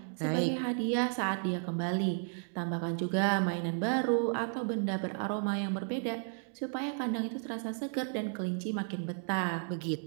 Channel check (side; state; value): left; silent; 56 dB below the other